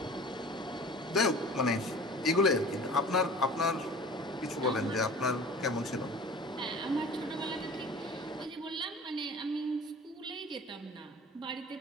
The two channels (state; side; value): normal; both; correlation 0.42